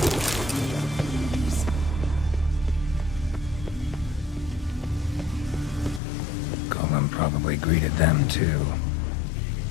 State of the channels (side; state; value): right; drops out; at 6.0 s